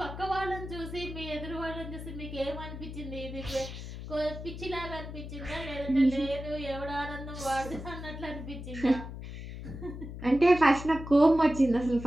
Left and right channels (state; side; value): noise; left; hum, 10 dB below the sound